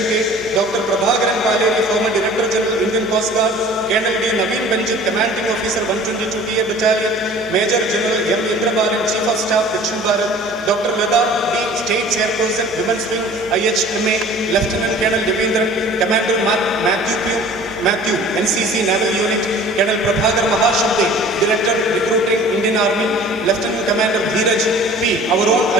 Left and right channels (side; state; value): both; normal; correlation 0.46